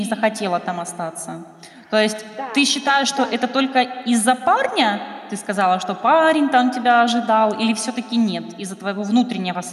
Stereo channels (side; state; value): both; identical; correlation 1.00